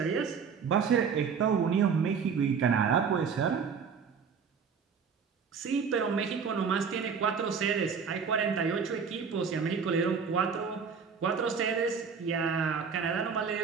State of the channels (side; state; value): left; quieter; 6.2 dB